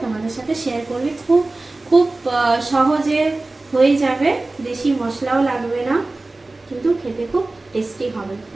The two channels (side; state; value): left; quieter; 3.1 dB